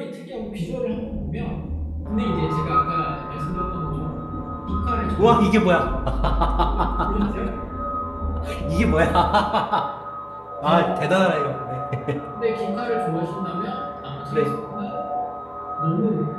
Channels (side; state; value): both; identical; correlation 1.00